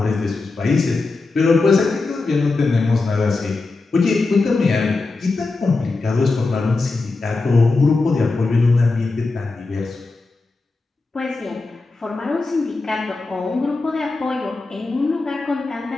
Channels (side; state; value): right; quieter; 3.7 dB